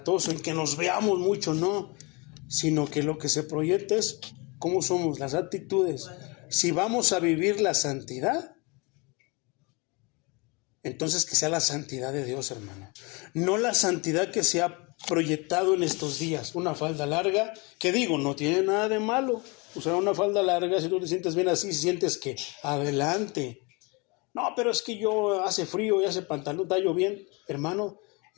en que nos veamos mucho, no, sino que lo que se proyecta es cómo somos, las actitudes. Si vamos a vivir la santidad, entonces que sea la santidad de Dios, hermano. No la santidad que se ha proyectado en estos días. Una falda larga, que digo, no tiene nada de malo. Usar una falda larga, si tú te sientes bien así, si sientes que adelante. No, pero es que yo hace frío y hace pantalón, tallo bien. Hermano,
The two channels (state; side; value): quieter; right; 28.4 dB